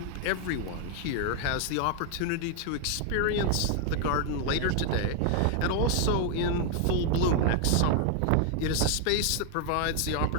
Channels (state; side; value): different; both; correlation 0.00